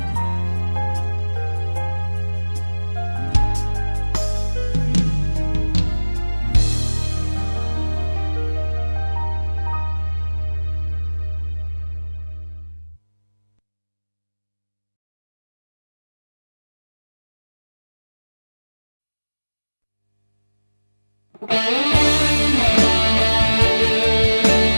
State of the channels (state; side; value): inverted; both; correlation -1.00